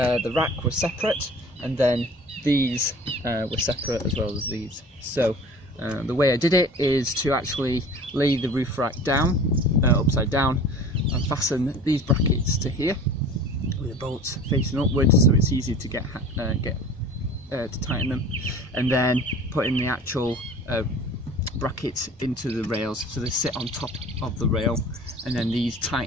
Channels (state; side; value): normal; both; correlation 0.42